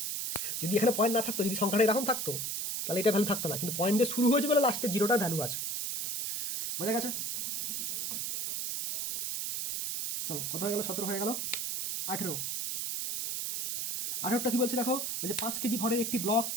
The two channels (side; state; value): right; noise; hiss, 2 dB below the sound